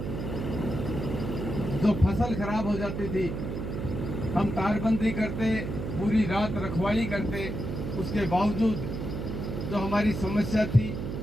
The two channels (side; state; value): right; noise; hum, 4 dB below the sound